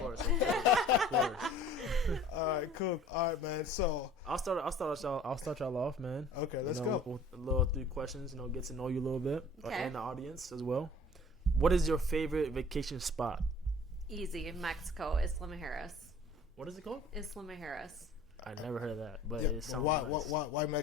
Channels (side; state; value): both; normal; correlation 0.48